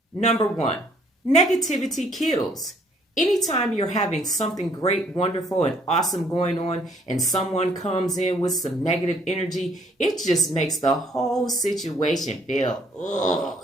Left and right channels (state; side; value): normal; both; correlation 0.64